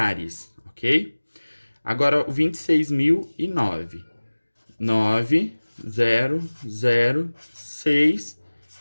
ok? Agora o 26.009. 9, 0, 0, 6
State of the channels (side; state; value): both; inverted; correlation -1.00